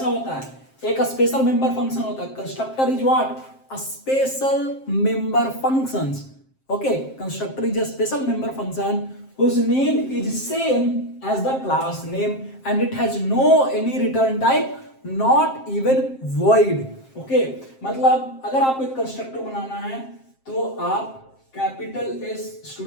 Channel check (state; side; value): late; right; 7.5 ms